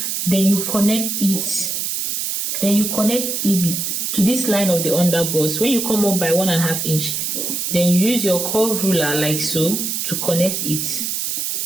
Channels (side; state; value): right; noise; hiss, 2 dB below the sound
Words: Then you connect it. Then you connect it to this line of the under bust. When you come up by 1.5 inch, then you use your curve ruler like so to connect it.